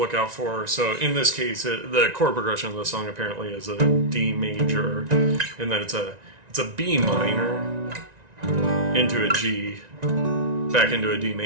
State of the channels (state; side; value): late; left; 1.9 ms